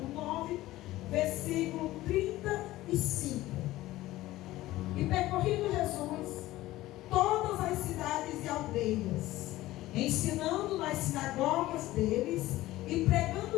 9, versículo 35. E percorrendo Jesus todas as cidades e aldeias, ensinando nas sinagogas deles e pregando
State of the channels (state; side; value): quieter; right; 16.6 dB